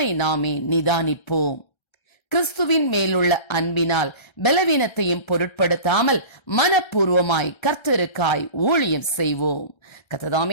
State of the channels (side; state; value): right; late; 1.3 ms